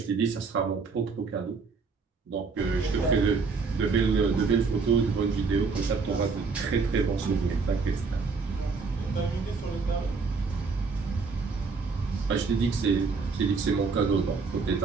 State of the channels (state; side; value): quieter; left; 4.6 dB